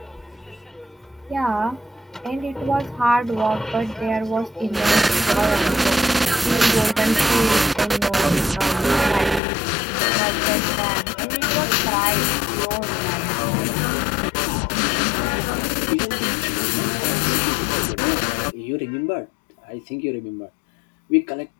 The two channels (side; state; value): right; drops out; at 9.4 s